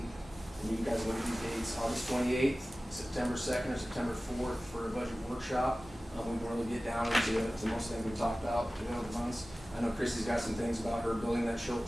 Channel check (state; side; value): normal; both; correlation 0.97